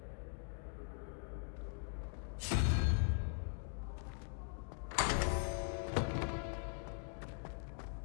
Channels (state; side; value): silent; right; 50 dB below the other